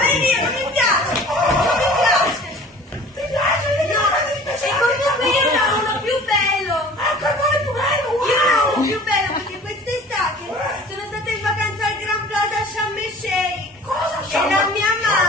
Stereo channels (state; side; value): normal; both; correlation 0.46